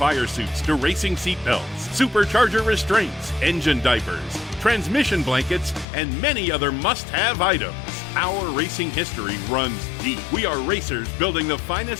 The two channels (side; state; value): right; drops out; at 5.9 s